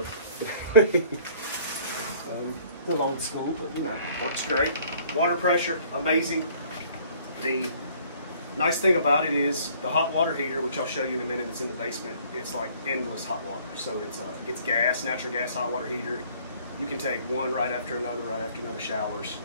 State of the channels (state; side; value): inverted; both; correlation -0.56